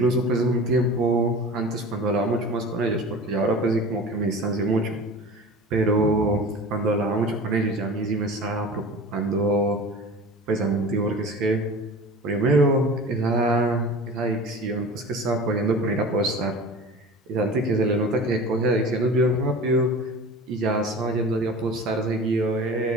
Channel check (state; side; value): normal; both; correlation 0.36